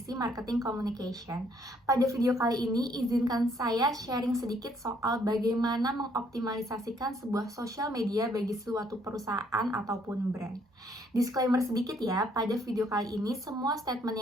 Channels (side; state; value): both; normal; correlation 0.66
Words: Marketing Communication. Pada video kali ini, izinkan saya sharing sedikit soal bagaimana mengoptimalisasikan sebuah sosial media bagi suatu perusahaan ataupun brand. Disclaimer sedikit ya, pada video kali ini semua statement